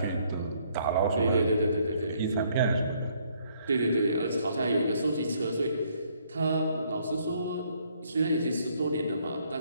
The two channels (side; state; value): both; inverted; correlation -0.67